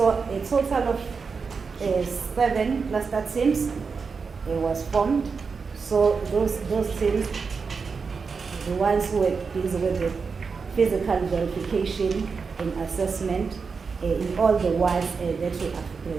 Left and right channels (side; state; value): left; quieter; 5.2 dB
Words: a total of 7 cluster teams was formed. So those teams, the ones who were busy with the physical verification and assessment in all the wards that